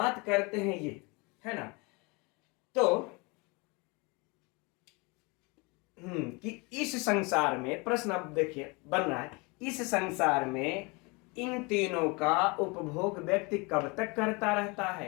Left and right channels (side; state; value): right; quieter; 28.2 dB